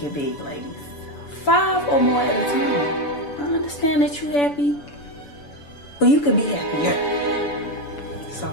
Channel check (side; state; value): right; late; 7.0 ms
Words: big, ladies. 5 or more at a time. I understand that you happy, but you could be happier. So